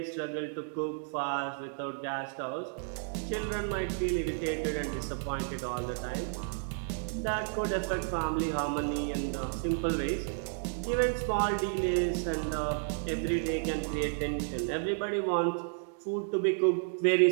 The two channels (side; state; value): left; silent; digital silence